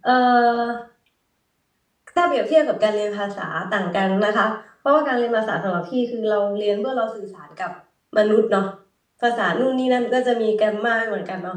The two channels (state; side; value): identical; both; correlation 1.00